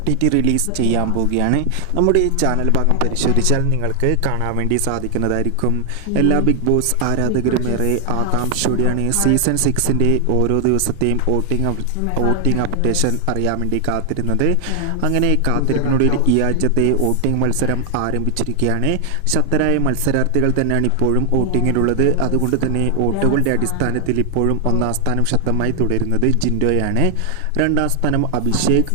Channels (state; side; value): different; both; correlation 0.00